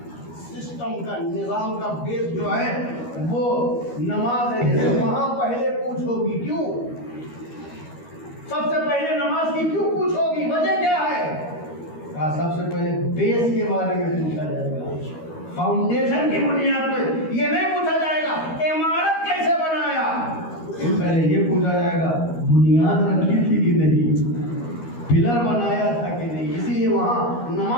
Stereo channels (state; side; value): late; right; 13 ms